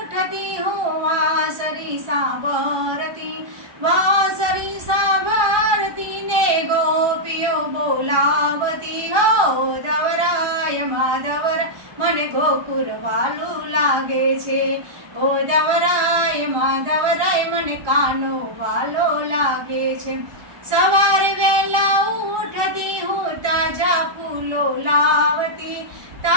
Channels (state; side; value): late; left; 1.2 ms